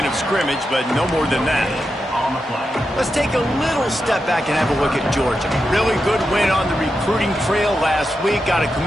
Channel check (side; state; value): both; normal; correlation 0.88